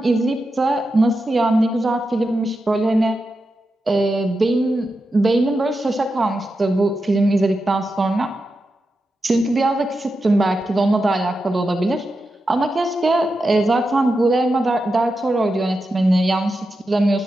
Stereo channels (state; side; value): normal; both; correlation 0.89